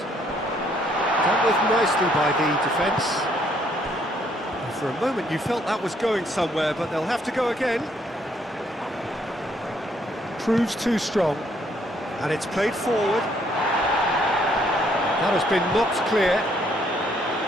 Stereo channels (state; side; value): normal; both; correlation 0.68